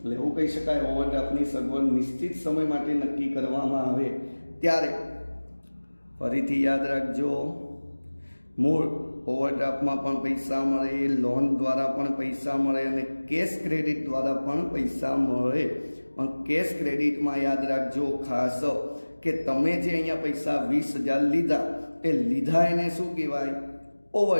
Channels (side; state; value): both; inverted; correlation -1.00